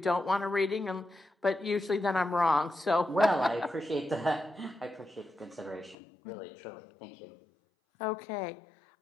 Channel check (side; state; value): right; drops out; at 6.0 s